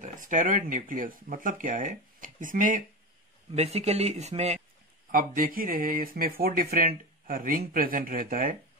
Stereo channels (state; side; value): normal; both; correlation 0.22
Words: है। स्टेरॉइड न्यूक्लियस मतलब क्या है, इसमें बेसिकली इसमें आप देख ही रहे हैं, इसमें 4 डिफरेंट रिंग प्रेजेंट रहता है।